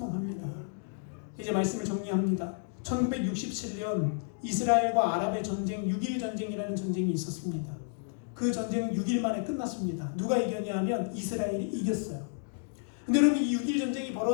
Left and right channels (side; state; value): right; silent; digital silence